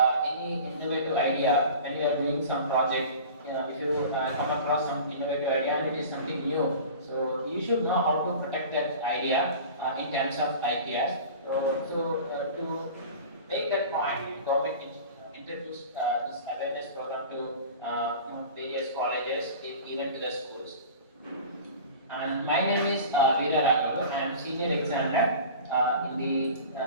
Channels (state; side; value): inverted; both; correlation -0.38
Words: any innovative idea when you are doing some project, if you come across some innovative idea and it is something new, so you should know how to protect that idea in terms of IPRs. To make that point, government introduced this awareness program to various colleges, even to the schools. And my name is Veera Raghav. I am senior examiner in